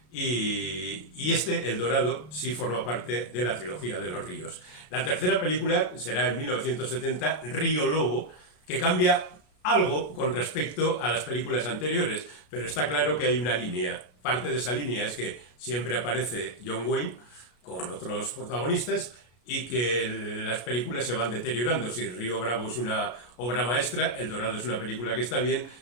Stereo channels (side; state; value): right; late; 33 ms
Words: y El Dorado, sí forma parte de la trilogía de los ríos. La tercera película será en 1970, Río Lobo, que cambia algo con respecto a las películas anteriores, pero está claro que hay una línea. Parte de esa línea es que siempre aparece John Wayne con otros protagonistas, y que las películas se van deteriorando. Si Río Bravo es una obra maestra, El Dorado es una película que está bien